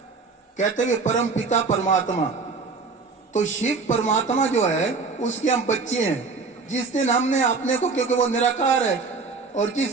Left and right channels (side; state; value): left; quieter; 4.4 dB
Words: कहते हैं परम पिता परमात्मा, तो शिव परमात्मा जो है उसके हम बच्चे हैं। जिस दिन हमने अपने को, क्योंकि वो निराकार है, और